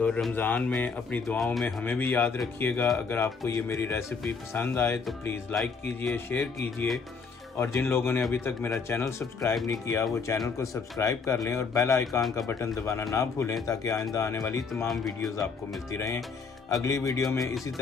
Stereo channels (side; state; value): right; quieter; 5.1 dB